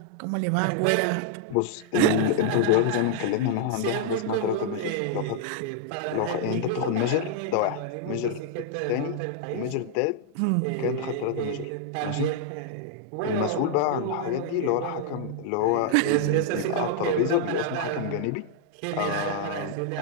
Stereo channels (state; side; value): different; both; correlation -0.01